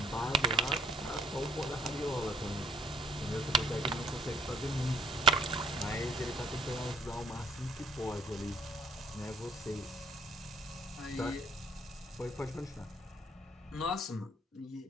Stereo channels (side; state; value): both; normal; correlation 0.60